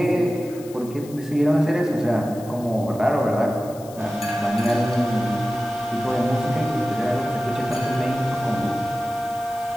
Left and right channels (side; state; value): left; noise; hiss, 20 dB below the sound